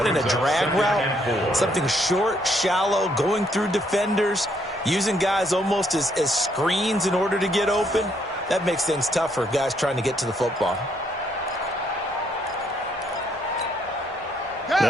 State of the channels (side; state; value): both; normal; correlation 0.71